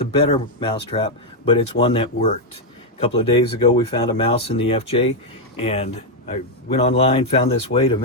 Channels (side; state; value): both; normal; correlation 0.01